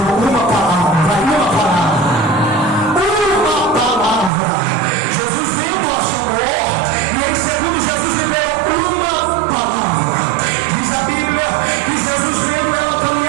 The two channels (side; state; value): left; drops out; at 4.3 s